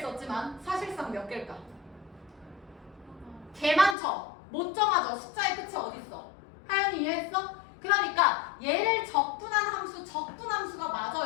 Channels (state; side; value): drops out; right; at 4.0 s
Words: 썼지만 사실상 몇 개일까? 개 많죠? 못 정하죠? 숫자의 끝이 어딨어? 하연이 이해했어? 그러니까 얘를 적분한 함수, 적분함수가